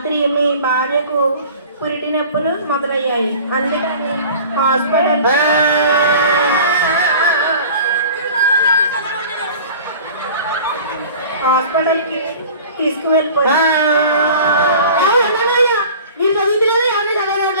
మీ భార్యకు పురిటి నొప్పులు మొదలయ్యాయి. అందుకని హాస్పిటల్కి తీసుకువెళ్ళిపోయారు.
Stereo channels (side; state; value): both; inverted; correlation -0.42